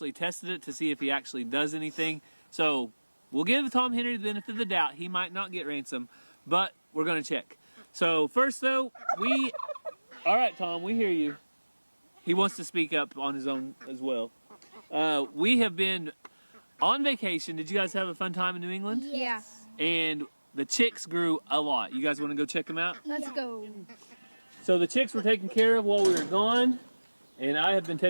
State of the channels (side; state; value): both; inverted; correlation -1.00